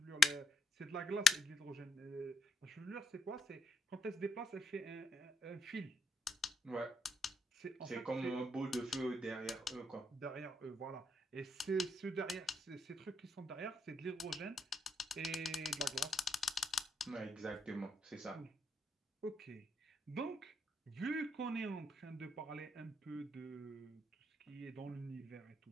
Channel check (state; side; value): normal; both; correlation 0.75